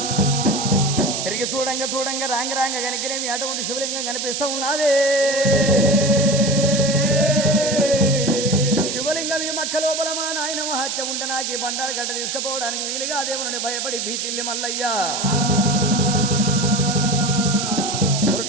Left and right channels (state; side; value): noise; right; hiss, 3 dB below the sound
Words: తిరిగి చూడంగా చూడంగా రాంగ గనికిరేమి అటువంటి శివలింగం కనిపిస్తూ ఉన్నది. శివలింగం ఈ మక్క లోపల మా నాయన మహత్యం ఉంటే నాకు ఈ బండారు గడ్డ తీసుకుపోవడానికి వీలుగా దేవుని భయపడి భీతిల్లి మల్లయ్యా